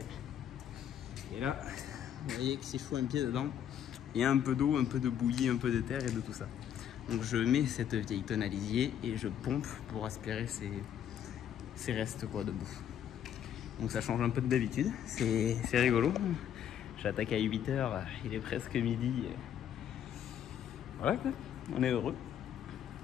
Et là, vous voyez que si je fous un pied dedans, il y a un peu d'eau, un peu de bouillie, un peu de terre et de tout ça. Donc je mets cette vieille tonne à lisier et je pompe pour aspirer ces restes quoi, de bouffe. Donc ça change un peu de d'habitude, c'est rigolo. J'attaque à 8 h, il est presque midi. Voilà quoi, on est heureux.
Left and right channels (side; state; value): right; quieter; 9.6 dB